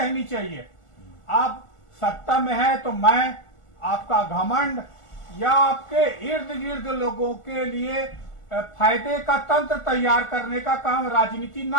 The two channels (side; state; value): right; late; 1.4 ms